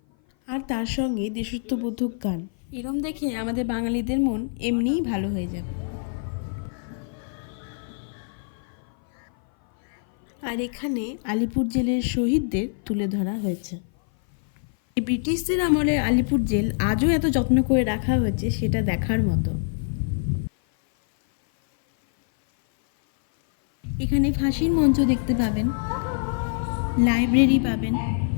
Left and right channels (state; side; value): silent; right; 56 dB below the other